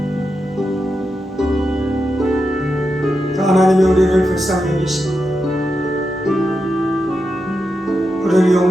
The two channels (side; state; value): both; normal; correlation 0.87